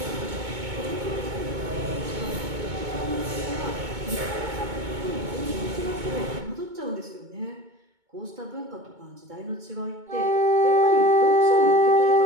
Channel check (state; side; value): late; left; 2.2 ms